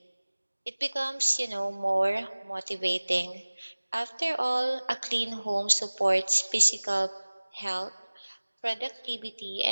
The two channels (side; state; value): both; inverted; correlation -1.00